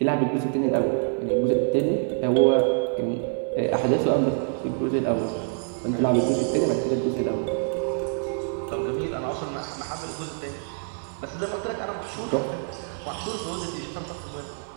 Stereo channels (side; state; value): left; silent; 58 dB below the other